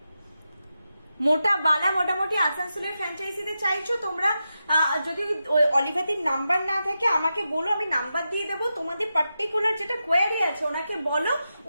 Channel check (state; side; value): inverted; both; correlation -0.89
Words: মোটা বালা মোটামুটি আসানসোলের ফ্র্যাঞ্চাইজিতে চাইছো তোমরা। যদি অলিভাদির নাম্বার না থাকে আমাকে বলো, আমি নাম্বার দিয়ে দেবো। তোমাদের পার্টিকুলার যেটা কোয়ারি আছে ওনাকে বলো,